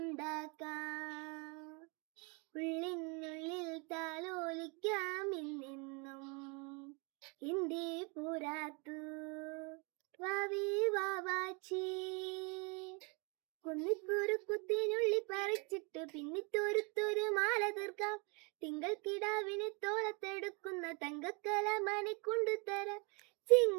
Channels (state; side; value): quieter; left; 32.5 dB